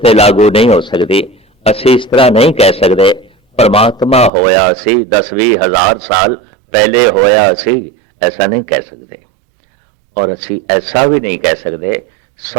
लागू नहीं हो सकती। असी इस तरह नहीं कह सकते परमात्मा होया सी 10-20 हजार साल पहले होया सी, ऐसा नहीं कह सकते। और असी ऐसा भी नहीं कह सकते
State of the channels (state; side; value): drops out; left; at 4.3 s